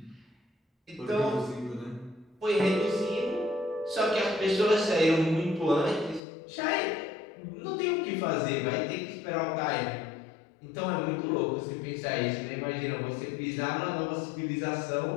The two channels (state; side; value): drops out; right; at 6.2 s